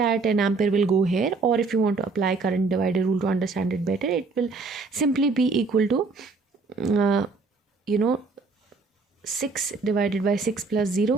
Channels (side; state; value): left; quieter; 4.1 dB